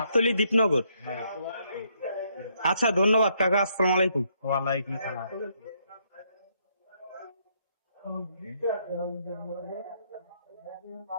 দীপনগর। হ্যাঁ। আচ্ছা, ধন্যবাদ কাকা। আসসালামু আলাইকুম। ওয়ালাইকুম সালাম।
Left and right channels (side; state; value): both; inverted; correlation -0.73